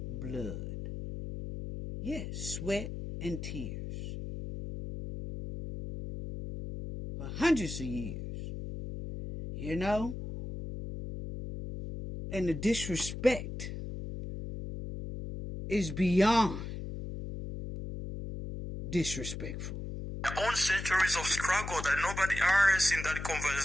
blood. Yes, sweat and tears. For hundreds of years. You know? And the disrespect is beyond disrespectful. own centuries of struggle that nobody else in that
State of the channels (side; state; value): left; noise; hum, 7 dB below the sound